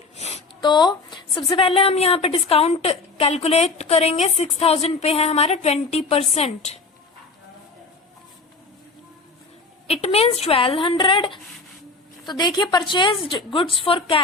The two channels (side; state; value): right; quieter; 3.9 dB